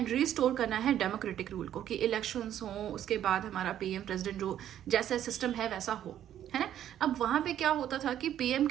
रिस्टोर करना है डेमोक्रेटिक रूल को, कि इलेक्शंस हो, उसके बाद हमारा पीएम प्रेसिडेंट जो जैसा सिस्टम है वैसा हो, है ना। अब वहां पे क्या होता था कि पीएम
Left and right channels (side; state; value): left; quieter; 11.0 dB